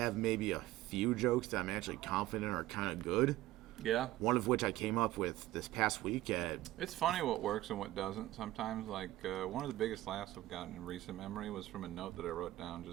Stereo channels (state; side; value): quieter; left; 16.2 dB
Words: maybe a few jokes that I'm actually confident are kind of good. Yeah. One of which I came up with this past weekend. It's funny what works and what doesn't sometimes. Like, one of the biggest laughs I've gotten in recent memory was from a note that I wrote down